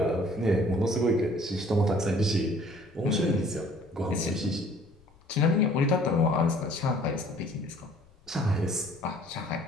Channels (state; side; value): noise; left; rumble, 30 dB below the sound